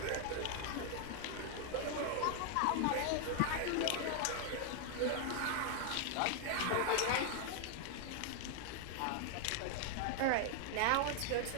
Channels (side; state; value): both; different; correlation 0.00